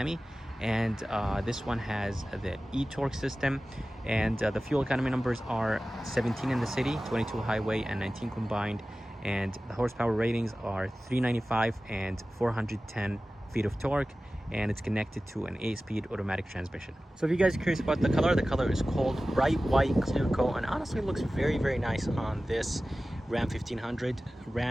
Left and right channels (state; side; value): normal; both; correlation 0.96